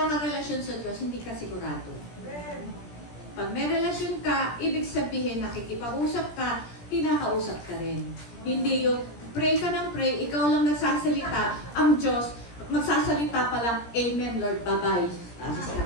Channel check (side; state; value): right; late; 17 ms